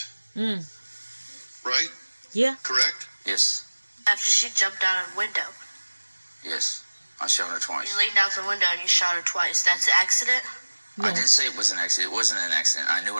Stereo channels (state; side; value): inverted; both; correlation -1.00